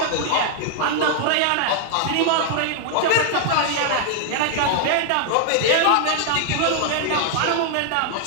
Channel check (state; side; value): different; both; correlation -0.01